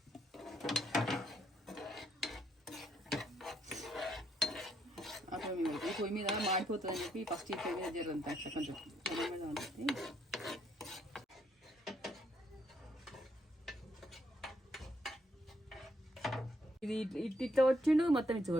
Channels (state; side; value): normal; both; correlation 0.74